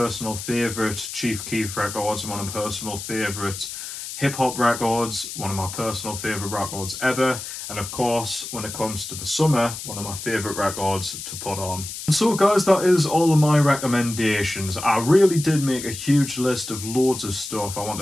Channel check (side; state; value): left; noise; hiss, 9 dB below the sound